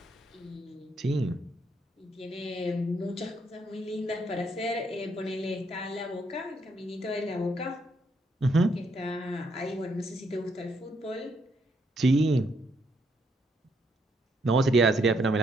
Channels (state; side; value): normal; both; correlation 0.74